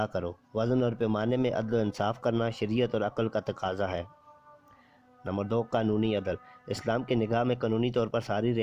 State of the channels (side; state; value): both; identical; correlation 1.00